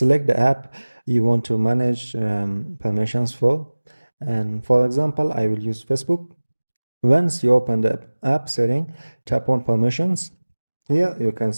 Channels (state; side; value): inverted; both; correlation -1.00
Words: the app you want to manage permissions for. And for example, I will use Facebook. Once you open the app setting, tap on permissions. Here you can